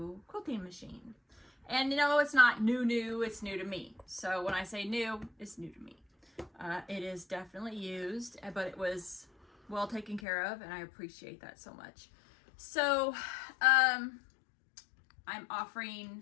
quilting machine. And you know, it's not new, it's new to me. So when I say new, it's new to me. It is definitely used, but it was well taken care of, and I appreciate that so much. So I'm offering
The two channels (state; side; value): drops out; right; at 10.2 s